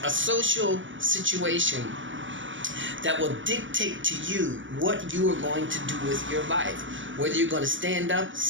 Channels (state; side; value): late; left; 0.56 ms